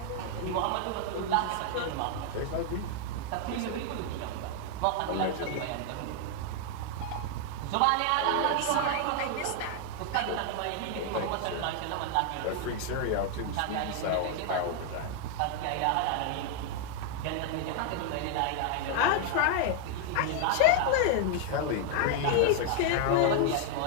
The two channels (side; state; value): both; different; correlation 0.00